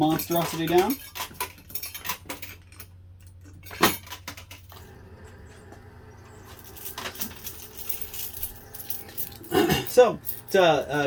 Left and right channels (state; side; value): identical; both; correlation 1.00